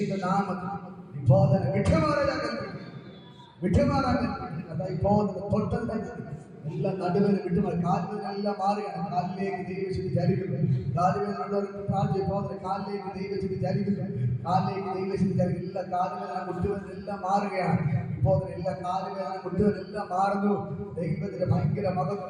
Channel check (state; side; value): identical; both; correlation 1.00